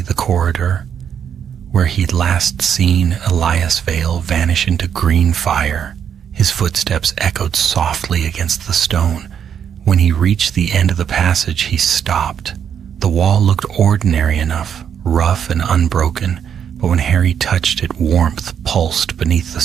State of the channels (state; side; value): quieter; left; 8.3 dB